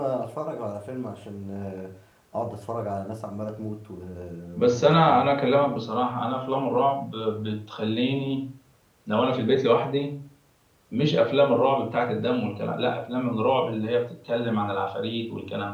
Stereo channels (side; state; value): both; identical; correlation 1.00